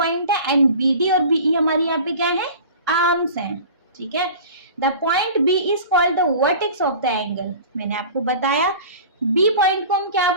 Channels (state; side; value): inverted; both; correlation -0.40